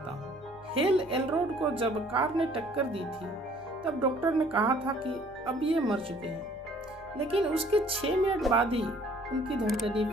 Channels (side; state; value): right; noise; rumble, 26 dB below the sound